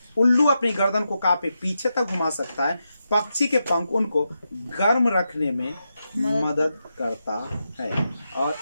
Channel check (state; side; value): inverted; both; correlation -0.87